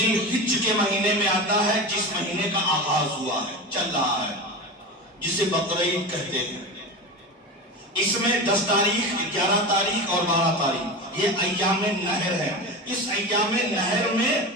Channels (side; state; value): both; normal; correlation 0.26